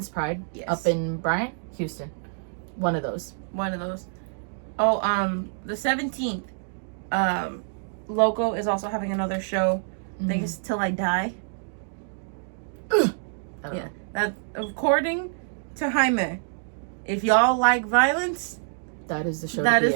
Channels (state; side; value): silent; left; digital silence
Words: Pride up in Bryan, Houston. One of those. Oh, the 17th, Loko is also having another show. I think it's Till I Die. Yeah. That, according to Jaime, if y'all like violence, that is the show. That is